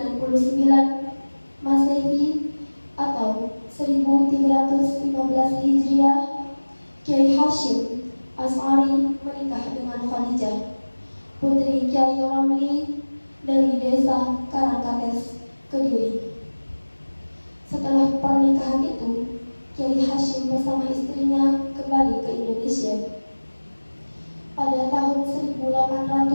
Masehi atau 1315 Hijriah, Kiai Hashim As'ari menikah dengan Khadijah, putri Kiai Ramli dari desa Karangkates, Kediri. Setelah pernikahan itu, Kiai Hashim bersama istrinya kembali ke Indonesia. Pada tahun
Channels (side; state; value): both; inverted; correlation -1.00